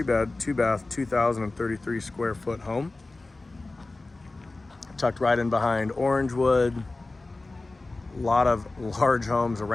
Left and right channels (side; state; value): right; quieter; 3.2 dB